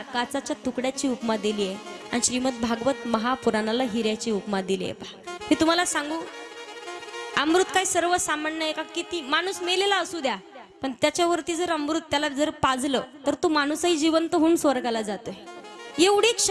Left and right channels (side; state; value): both; identical; correlation 1.00